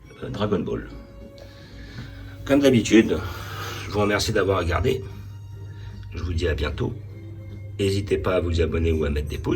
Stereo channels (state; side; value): identical; both; correlation 1.00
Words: Dragon Ball. Comme d'habitude, je vous remercie d'avoir regardé. Je vous dis à bientôt. N'hésitez pas à vous abonner ou à mettre des